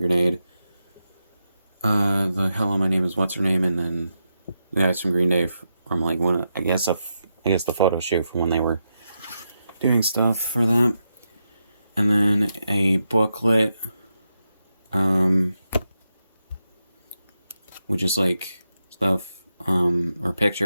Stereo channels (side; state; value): both; inverted; correlation -0.86